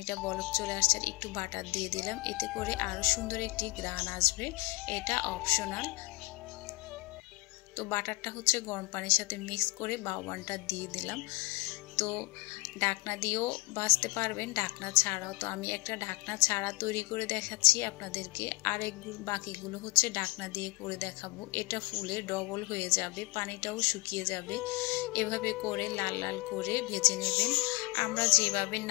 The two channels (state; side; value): quieter; right; 24.3 dB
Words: বলক চলে আসছে। আর একটু বাটার দিয়ে দিলাম, এতে করে আরও সুন্দর একটি ঘ্রাণ আসবে। এটা অপশনাল। তো বাটারটা হচ্ছে গরম পানির সাথে মিক্স করে বাউবানটা দিয়ে দিলাম। তো ঢাকনা দিয়েও ভাজতে পারবেন, ঢাকনা ছাড়াও। তো আমি একটা ঢাকনা ছাড়া তৈরি করে দেখাচ্ছি আপনাদেরকে। বাকিগুলো হচ্ছে ঢাকনা দিয়ে করে দেখাবো। এটা ফুলে ডবল হয়ে যাবে, পানিটাও শুকিয়ে যাবে। এভাবে করে লাল লাল করে ভেজে নেবেন। আমরা যেভাবে